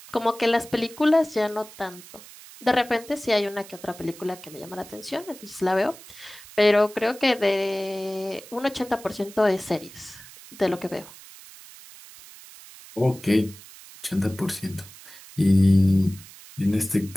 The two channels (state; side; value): noise; right; hiss, 19 dB below the sound